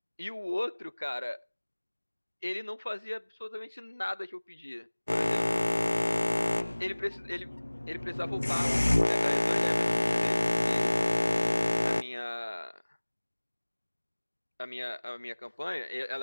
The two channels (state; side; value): inverted; both; correlation -1.00